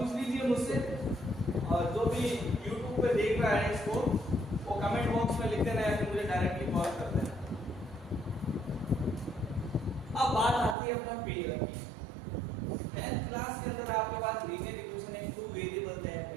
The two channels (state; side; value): drops out; left; at 10.8 s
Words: लीजिए मुझसे, और जो भी YouTube पे देख रहा है इसको वो कमेंट बॉक्स में लिख देना है, फिर मुझे डायरेक्टली कॉल कर देना। अब बात आती है अपना पेयर की। 10th क्लास के अंदर आपके पास लीनियर इक्वेशन है, 2 वेरिएबल है,